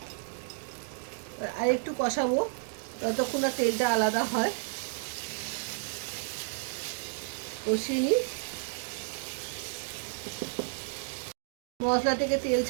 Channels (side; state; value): left; silent; digital silence